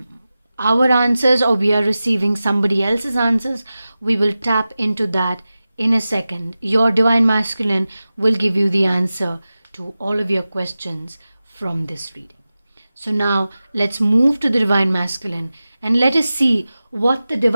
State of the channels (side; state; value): both; inverted; correlation -0.95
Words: answers or we are receiving somebody else's answers? We will tap into that in a second. Your Divine Masculine will give you the answer to all of your questions from this reading. So now let's move to the Divine Masculine and let us see what the